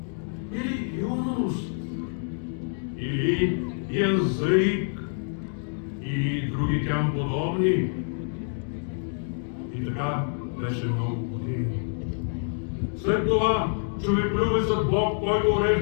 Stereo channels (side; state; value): right; silent; 60 dB below the other